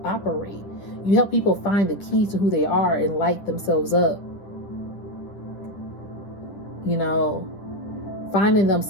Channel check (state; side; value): late; right; 10 ms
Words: operate. You help people find the key to who they are and light themselves up. Finding